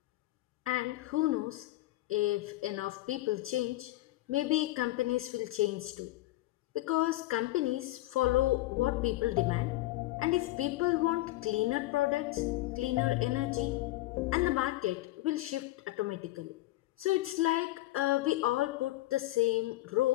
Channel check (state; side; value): quieter; right; 17.4 dB